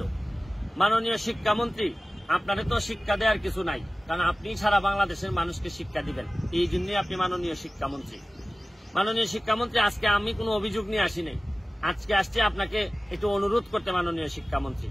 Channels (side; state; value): both; normal; correlation 0.97